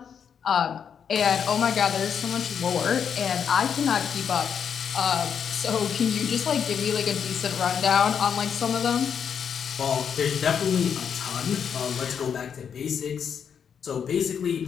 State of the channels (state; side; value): quieter; right; 7.5 dB